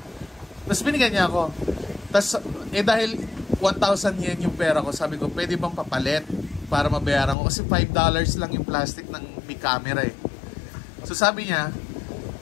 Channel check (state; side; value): drops out; right; at 7.4 s